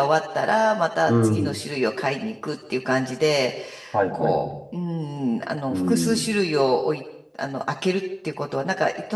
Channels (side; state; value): both; identical; correlation 1.00